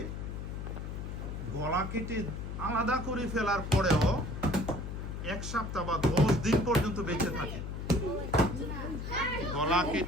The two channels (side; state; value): left; noise; hum, 6 dB below the sound